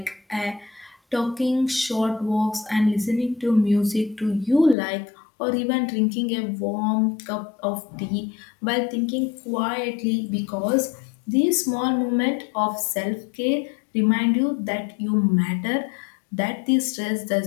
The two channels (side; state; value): right; drops out; at 4.8 s